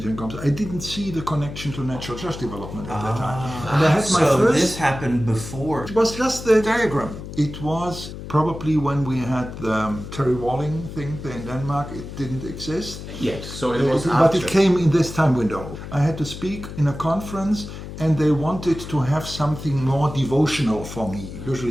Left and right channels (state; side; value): noise; left; hum, 10 dB below the sound